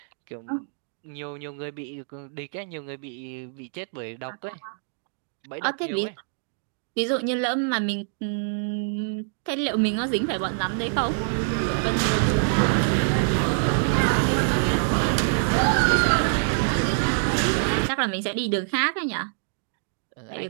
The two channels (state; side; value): silent; left; digital silence